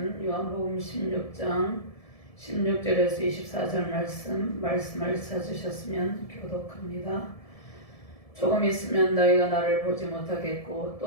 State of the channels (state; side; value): late; right; 1.7 ms